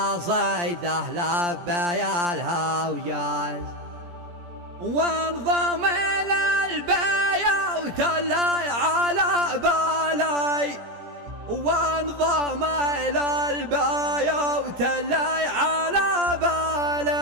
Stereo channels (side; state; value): left; late; 17 ms